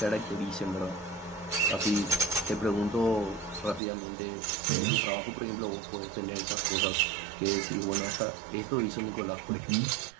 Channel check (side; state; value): left; drops out; at 3.8 s